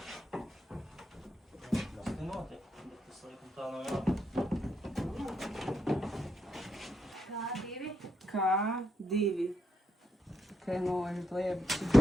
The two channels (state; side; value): normal; both; correlation 0.80